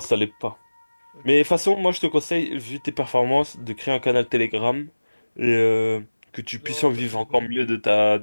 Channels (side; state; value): both; inverted; correlation -1.00